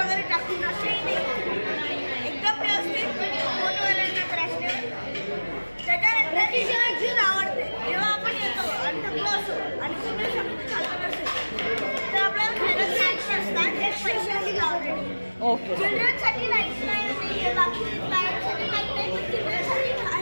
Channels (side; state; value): both; inverted; correlation -1.00